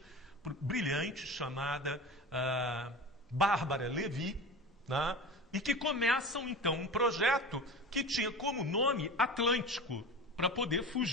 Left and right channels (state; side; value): normal; both; correlation 0.32